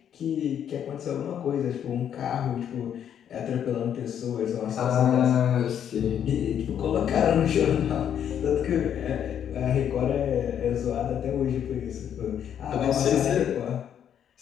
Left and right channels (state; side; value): quieter; right; 9.2 dB